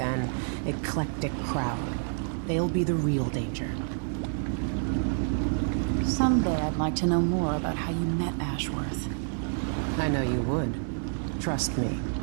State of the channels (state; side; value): silent; left; 56 dB below the other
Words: eclectic crowd. They'll be the real danger. Someday I'd like to know more about how you met Ashworth. I know you would. Trust me.